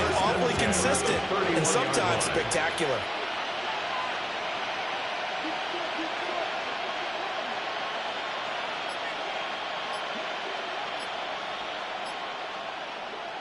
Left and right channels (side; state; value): both; identical; correlation 1.00